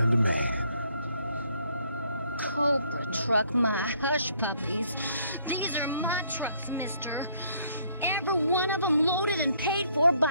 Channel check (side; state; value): both; inverted; correlation -0.66